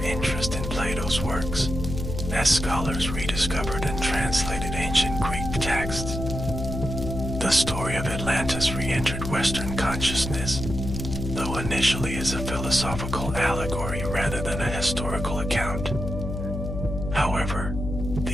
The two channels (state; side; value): noise; left; hum, 5 dB below the sound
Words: interest in Plato's works, as scholars rediscovered and translated ancient Greek texts. The story of Atlantis re-entered Western consciousness, though initially as a philosophical allegory rather than a historical account. However,